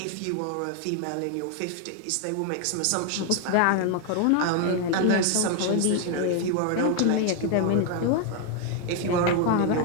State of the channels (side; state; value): both; different; correlation 0.00